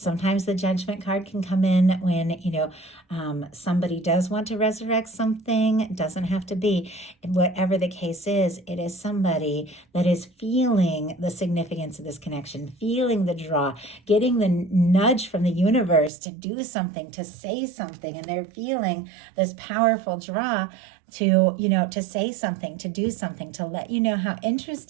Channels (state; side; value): drops out; left; at 16.1 s